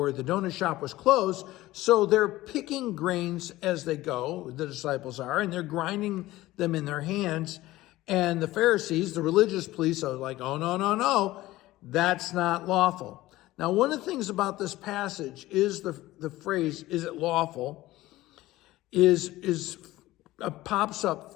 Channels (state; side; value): quieter; right; 17.1 dB